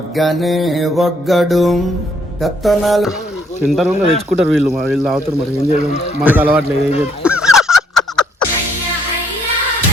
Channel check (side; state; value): both; normal; correlation 0.68